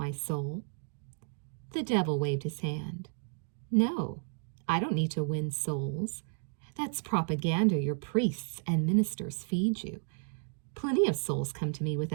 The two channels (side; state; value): left; silent; 56 dB below the other